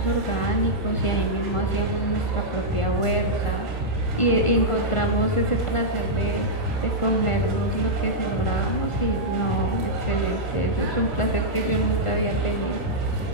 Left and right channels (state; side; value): late; right; 1.4 ms